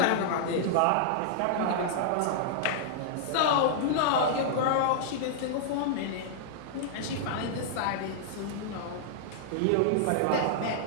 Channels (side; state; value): both; different; correlation -0.01